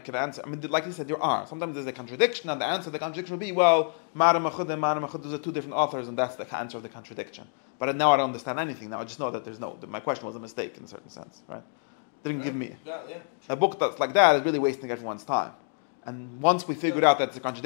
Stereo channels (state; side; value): silent; right; 59 dB below the other